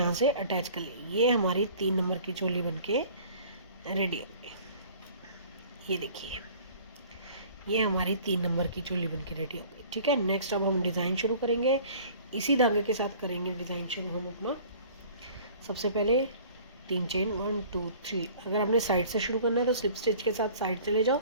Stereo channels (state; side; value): inverted; both; correlation -0.49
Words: से अटैच कर ली। ये हमारी 3 नंबर की चोली बनके रेडी हो गई। ये देखिए, ये हमारी 3 नंबर की चोली बनके रेडी हो गई। ठीक है, नेक्स्ट अब हम डिज़ाइन शुरू करेंगे, इसी धागे के साथ करेंगे डिज़ाइन शुरू हम अपना। सबसे पहले 3 चेन 1 2 3। अगर आपने साइड से शुरू करना है तो स्लिप स्टिच के साथ साइड चले जाओ,